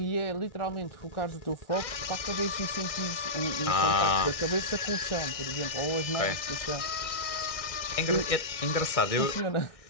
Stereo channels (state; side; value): late; right; 1.6 ms